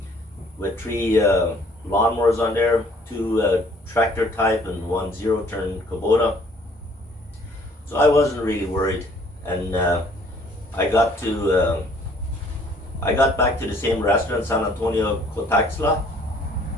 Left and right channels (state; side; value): normal; both; correlation 0.58